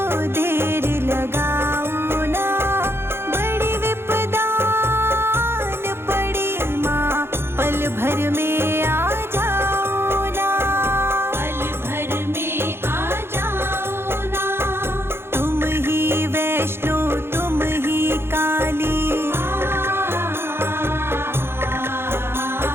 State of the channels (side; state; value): left; late; 0.11 ms